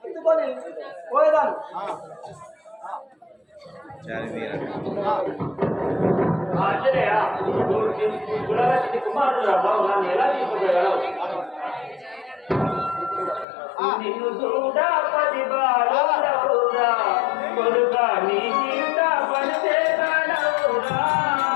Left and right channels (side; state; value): right; drops out; at 13.5 s